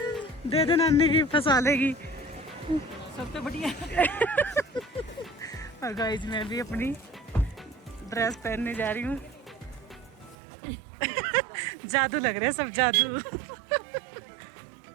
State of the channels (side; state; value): left; drops out; at 10.4 s